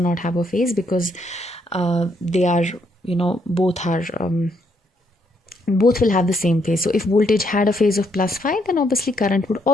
have a phase, because they are, both will have the same phase. So if voltage had a phase of plus phi, then obviously current would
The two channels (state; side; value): normal; both; correlation 0.73